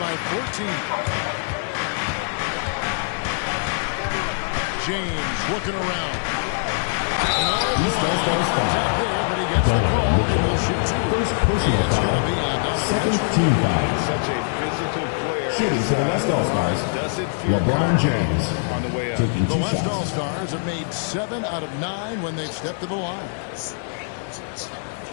14. James looking around. No contact there, but he gets the call and will shoot 2. It's going to be on Donovan Mitchell. Such a physical player. Shooting for the West All-Stars, Doesn't feel LeBron James on the way up. The West All-Stars have made 7 out of 9 when they've stepped to the line.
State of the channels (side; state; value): right; silent; digital silence